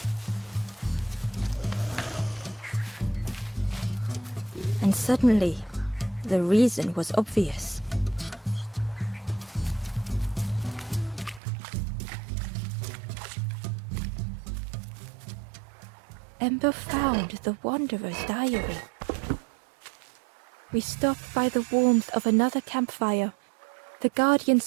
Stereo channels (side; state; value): left; drops out; at 11.4 s